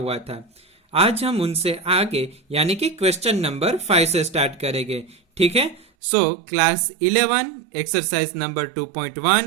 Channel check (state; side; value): drops out; left; at 5.9 s